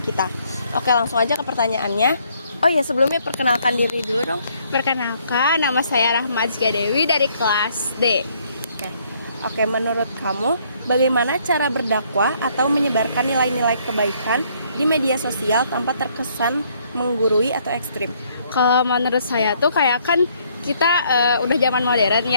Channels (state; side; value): inverted; both; correlation -0.67